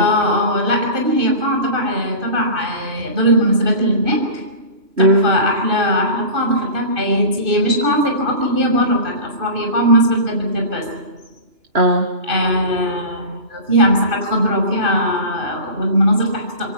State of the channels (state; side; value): late; left; 2.9 ms